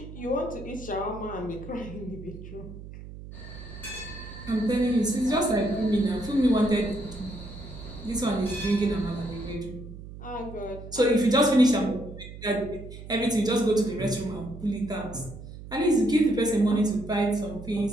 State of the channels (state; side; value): noise; right; hum, 13 dB below the sound